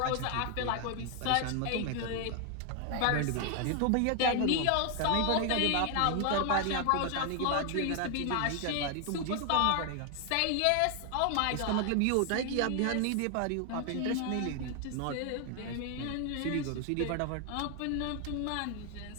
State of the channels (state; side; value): different; both; correlation 0.00